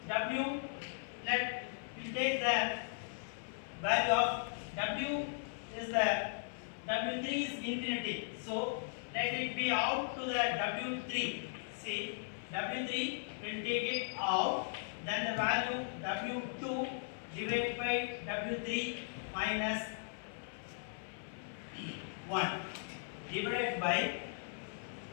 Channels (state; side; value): silent; right; 53 dB below the other